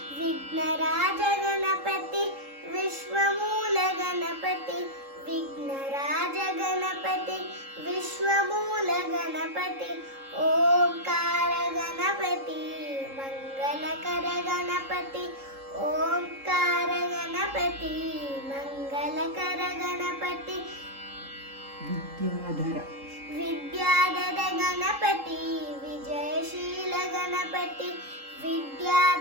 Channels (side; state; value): left; late; 3.7 ms